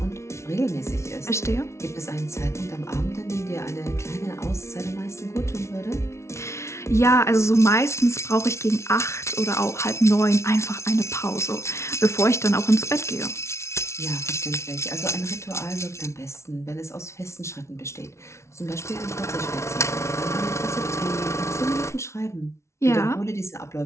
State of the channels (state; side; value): late; right; 0.13 ms